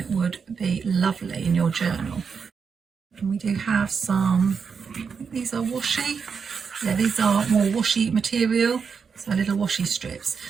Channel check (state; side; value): quieter; left; 6.0 dB